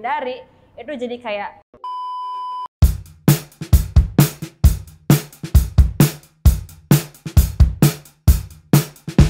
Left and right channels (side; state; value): both; identical; correlation 1.00